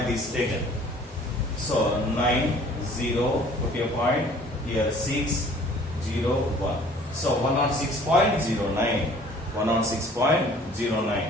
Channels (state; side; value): normal; both; correlation 0.52